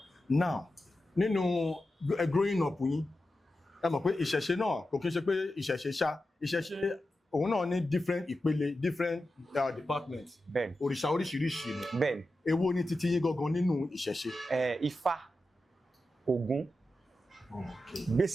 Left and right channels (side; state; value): both; normal; correlation 0.91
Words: Now, nínú growing up yín, ẹ mọ̀ pé ìṣẹ̀ṣe náà kò kí n ṣe pé ìṣẹ̀ṣe òun náà ní different ìpele, different departments. Bẹ́ẹ̀ni. Òrìṣà oríṣiríṣi ni. Bẹ́ẹ̀ni. Èwo ni titi yín gangan nínú ìṣẹ̀ṣe? Ifá, Ògún.